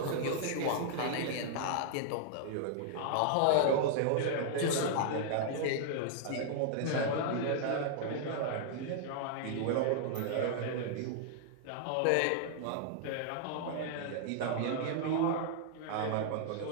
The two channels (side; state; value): both; different; correlation -0.01